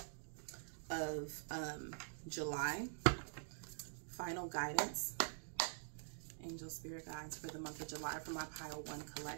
of, July. Final guidance, angel spirit guides for the month of July for my pile 1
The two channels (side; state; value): left; silent; digital silence